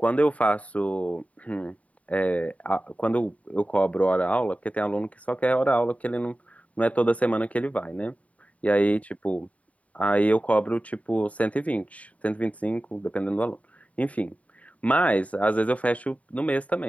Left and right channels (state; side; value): late; right; 0.068 ms